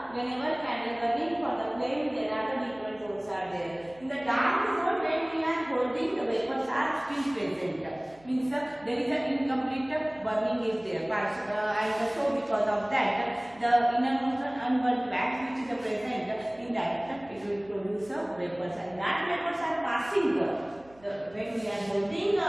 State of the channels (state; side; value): noise; right; hum, 27 dB below the sound